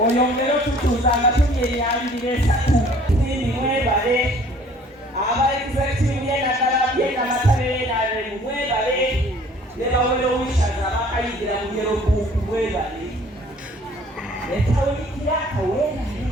otutuuza nga tuli emyaliriro esatu. Sindi mwebale, aba executive y'enaddala y'enamatabere n'alemu mwebale, ne bawera owishaza abakayigira mu yero buuku mwebale. Etawulikira akaweerale,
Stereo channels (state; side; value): normal; both; correlation 0.54